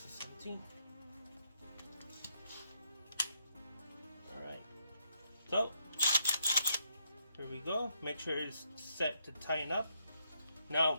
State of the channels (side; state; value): both; inverted; correlation -0.76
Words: a 17. All right. So here we go. Make sure it's set to tighten up.